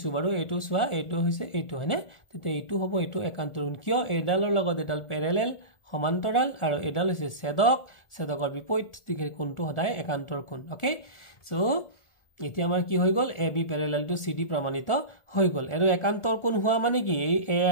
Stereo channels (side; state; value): right; late; 1.4 ms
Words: বাৰু এইটো চোৱা এইটো হৈছে এইটো হয়নে তেতিয়া এইটো হ'ব এইটো একান্তৰ কোণ কিয় এডালৰ লগত এডাল প্যাৰেলেল সমান্তৰাল আৰু এডাল হৈছে ছেদকৰ বিপৰীত দিশে কোণটো সদায় একান্তৰ কোণ ওকে সো এতিয়া আমাৰ কি হৈ গল AB parallel to CD প্ৰমাণিত হৈ গল আৰু একান্তৰ কোণ হোৱা মানে কি এই A